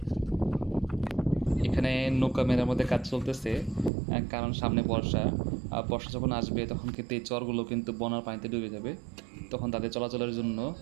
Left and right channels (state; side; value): drops out; left; at 3.9 s